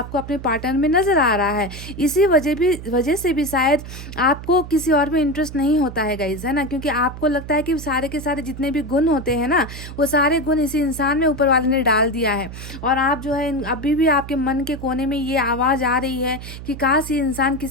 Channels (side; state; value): right; noise; hum, 11 dB below the sound